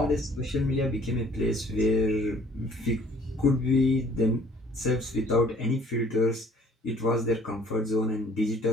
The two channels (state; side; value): normal; both; correlation 0.57